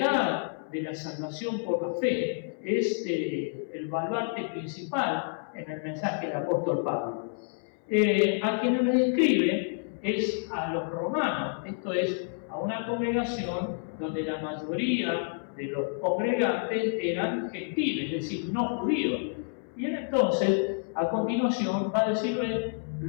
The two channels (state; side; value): silent; right; 58 dB below the other